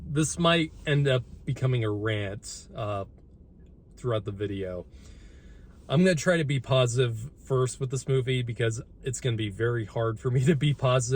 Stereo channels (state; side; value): identical; both; correlation 1.00